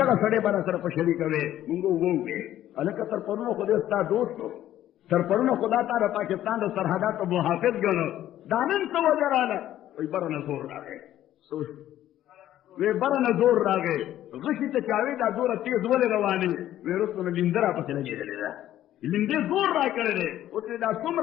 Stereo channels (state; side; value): quieter; right; 12.7 dB